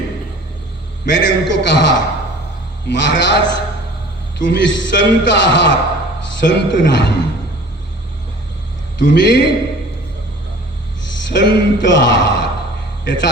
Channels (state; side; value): normal; both; correlation 0.47